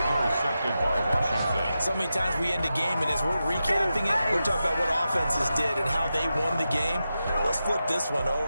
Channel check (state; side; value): inverted; both; correlation -0.90